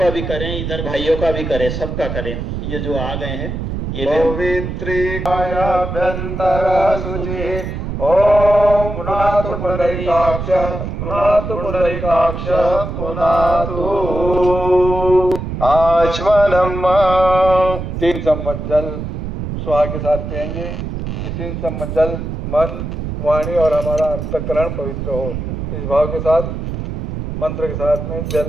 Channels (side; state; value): right; noise; rumble, 5 dB below the sound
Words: भी करें, इधर भाइयों का भी करें, सबका करें। ये जो आ गए हैं ये पवित्रीकायाभ्यन्तर शुचि। ओम पुनातु पुंडरीकाक्ष पुनातु पुंडरीकाक्ष पुनातु आचमनम। 3 चम्मच जल स्वाहा के साथ पिएंगे। ये 3 चम्मच जल मन, वाणी और हमारा अंतःकरण पवित्र हो, इस भाव के साथ मंत्र के साथ में जल